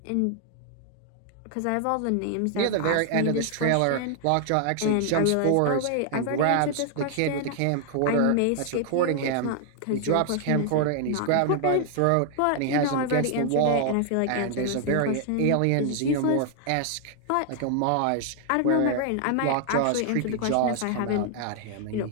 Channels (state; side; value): different; both; correlation 0.00